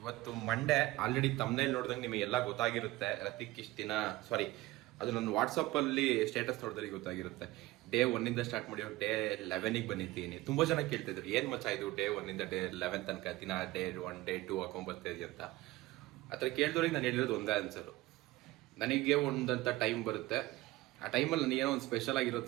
ಮಂಡೇ. ಆಲ್ರೆಡಿ ತಮ್ಮನೇಲಿ ನೋಡಿದಂಗೆ ನಿಮಗೆಲ್ಲ ಗೊತ್ತಾಗಿರುತ್ತೆ. ರತಿಕ್ ಇಷ್ಟು ದಿನ ಅದು ನನ್ನ ವಾಟ್ಸಪ್ಪಲ್ಲಿ ಸ್ಟೇಟಸ್ ನೋಡಿದ್ರೆ ಗೊತ್ತಾಗಿರುತ್ತೆ. ಡೇ 1 ಸ್ಟಾರ್ಟ್ ಮಾಡಿ ಡೇ 11 ಬಂದಿದ್ದೀನಿ. ತುಂಬ ಜನ ಕೇಳ್ತಿದ್ರು, ಏನು ಮಚ್ಚ ಇದು ಡೇ 1 ಡೇ 11 ತನಕ ದಿನ ಡೇ 1 ಡೇ 2 ಹಾಕೊಂಡ್ಬರ್ತಾಯಿದ್ವಿ ಅಂತ. ಆ ಥರ ಕೇಳಿದವ್ರಿಗೆ ನಾನು ಹೇಳಿರೋದು ಒಂದೇ ಆನ್ಸರು. ನನಗೆ ಒಂದಂಥ ಟೈಮ್ ಬರುತ್ತೆ, ಆ ಟೈಮಲ್ಲಿ ನನಗೇನೋ ಒಂದು ಸ್ಪೆಷಲ್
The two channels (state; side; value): quieter; left; 18.6 dB